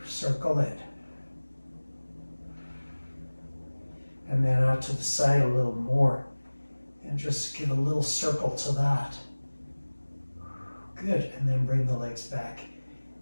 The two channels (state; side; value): inverted; both; correlation -1.00